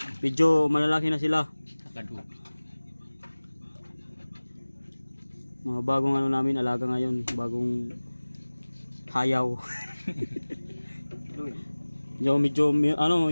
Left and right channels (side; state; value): both; inverted; correlation -1.00